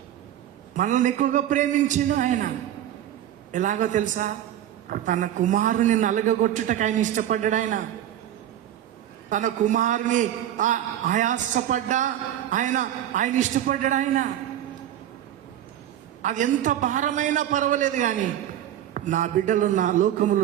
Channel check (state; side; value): quieter; left; 11.5 dB